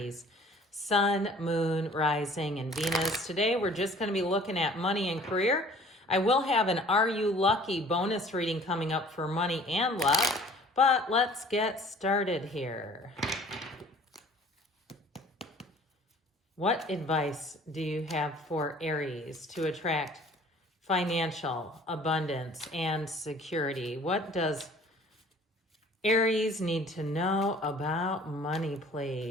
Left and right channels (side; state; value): both; normal; correlation 0.51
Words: Sun, Moon, Rising, and Venus. Today we're just going to be looking at money and career. I will have an Are You Lucky bonus reading coming up for money and luck, but let's get started here. What advice do you have for Aries to attract financial abundance and security? What does Aries need to know about money,